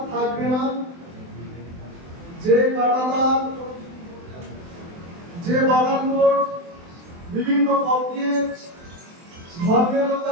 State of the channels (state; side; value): late; left; 23 ms